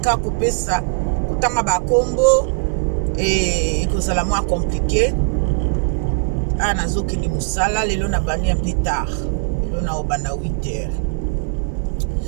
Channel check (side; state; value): left; silent; 59 dB below the other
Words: couper ça. Tanga ba combo et kozala moins compliqué. Ah nazoki ni musala lelo na bani un peu tard. Lelo na obanda 8h.